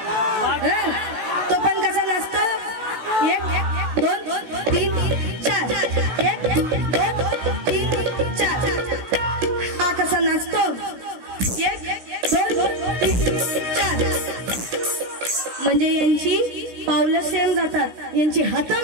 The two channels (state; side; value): late; left; 16 ms